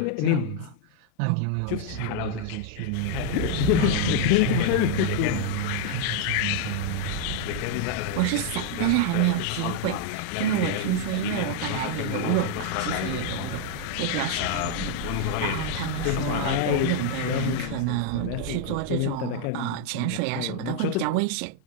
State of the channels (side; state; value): both; different; correlation 0.00